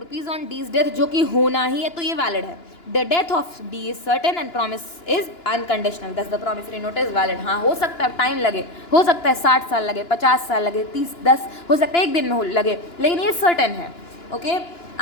on D's death, जो कि होना ही है, तो ये वैलिड है. The death of D is certain and promise is unconditional, thus the promissory note is valid. हाँ, हो सकता है टाइम लगे, हो सकता है 60 साल लगे, 50 साल लगे, 10 हो सकता है एक दिन में लगे, लेकिन ये सर्टेन है. Okay,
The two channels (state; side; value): late; right; 2.9 ms